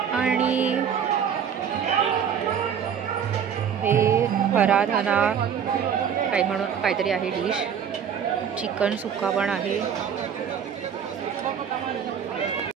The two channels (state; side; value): quieter; left; 8.0 dB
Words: आणि हे हराधना काहीतरी आहे डिश. चिकन सुक्का पण आहे,